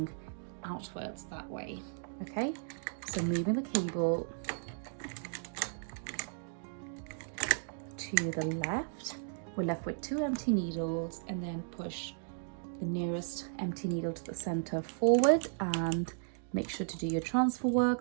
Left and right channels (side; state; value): left; silent; digital silence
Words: outwards that way. Okay, So moving the cable to the left, we're left with 2 empty needles, and then push the nearest empty needle to the center forward and make sure to do your transfer